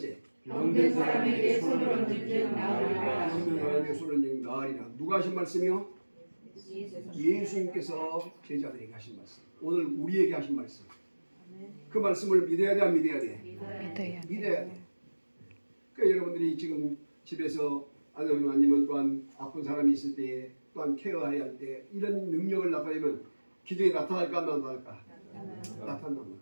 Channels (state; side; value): inverted; both; correlation -1.00